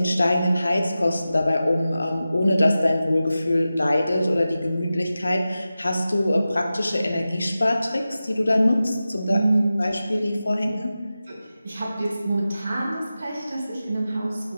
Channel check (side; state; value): both; inverted; correlation -0.94